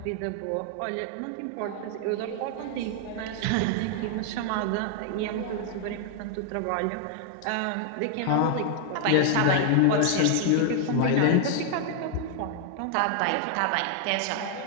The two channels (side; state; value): both; different; correlation 0.00